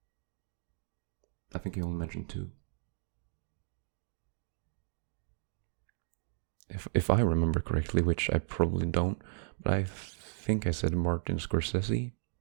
I think I only mentioned two. If I remember correctly, which I probably don't, but I think I said Martin Scorsese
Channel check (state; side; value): silent; left; digital silence